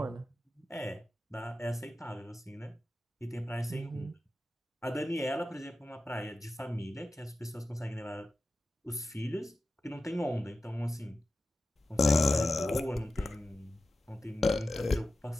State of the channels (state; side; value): normal; both; correlation 0.93